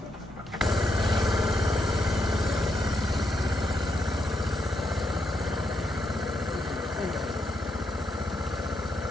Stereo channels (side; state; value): both; normal; correlation 0.79